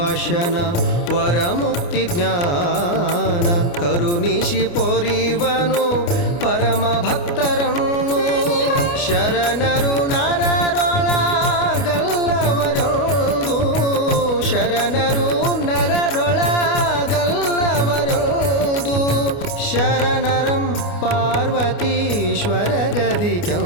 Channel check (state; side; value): late; right; 29 ms